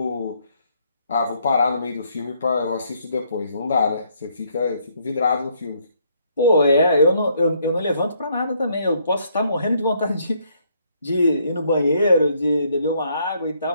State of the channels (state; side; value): inverted; both; correlation -0.70